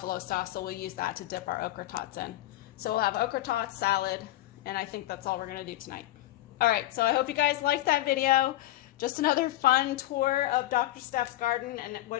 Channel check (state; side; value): quieter; right; 15.5 dB